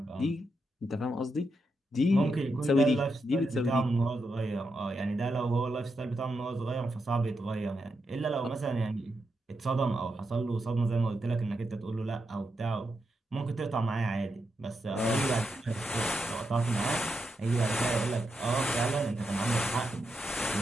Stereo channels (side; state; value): both; normal; correlation 0.84